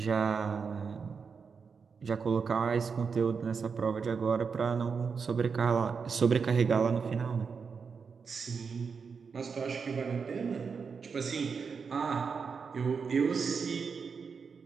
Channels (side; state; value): left; quieter; 5.6 dB